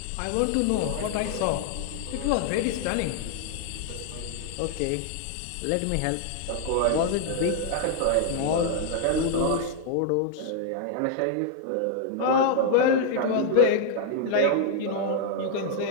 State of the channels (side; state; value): both; different; correlation 0.00